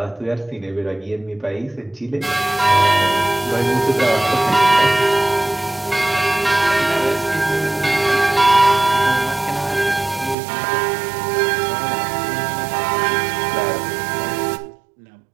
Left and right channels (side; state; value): left; drops out; at 10.4 s